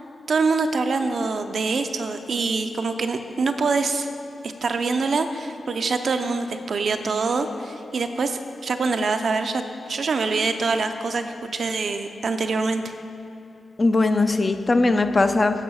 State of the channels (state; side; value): normal; both; correlation 0.88